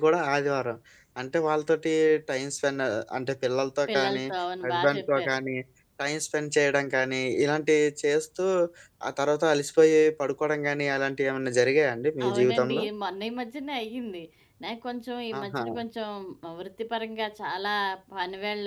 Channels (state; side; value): identical; both; correlation 1.00